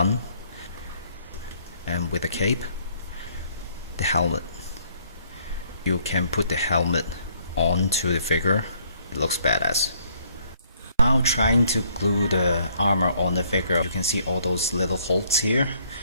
And with the cape, the helmet. You can put the helmet onto the figure. It looks badass. Now trying to glue the armor on the figure, you can see all those little holes here.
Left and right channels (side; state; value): both; inverted; correlation -0.65